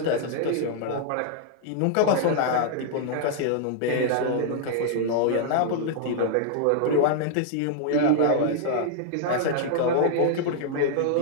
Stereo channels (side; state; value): both; different; correlation -0.01